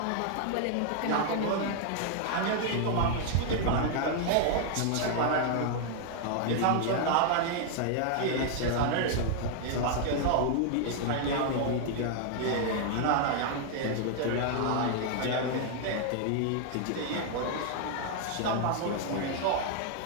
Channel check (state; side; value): different; both; correlation 0.00